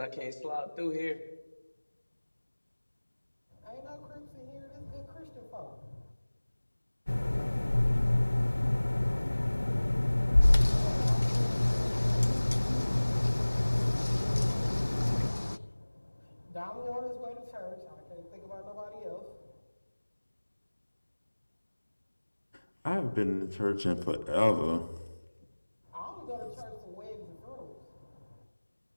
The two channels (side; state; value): both; inverted; correlation -1.00